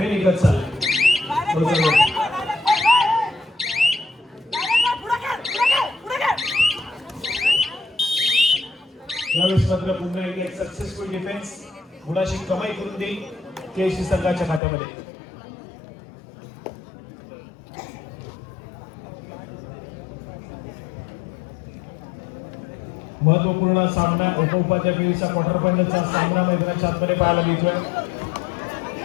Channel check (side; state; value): right; drops out; at 14.6 s